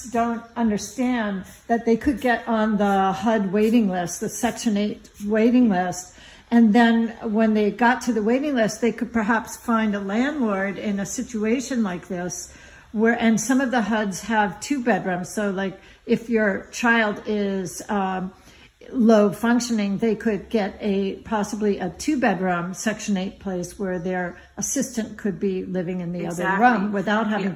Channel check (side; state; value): both; identical; correlation 1.00